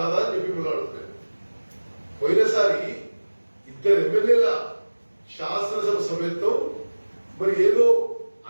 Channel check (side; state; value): both; inverted; correlation -1.00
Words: అని చెప్పి మీరు అడుగుతారు. పోయినసారి 2 ఎమ్మెల్యేల శాసనసభ సభ్యత్వం మరి ఏదో